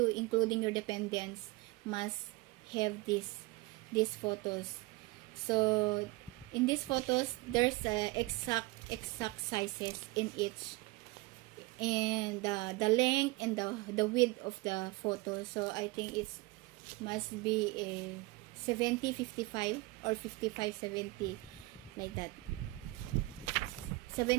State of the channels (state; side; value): quieter; left; 22.5 dB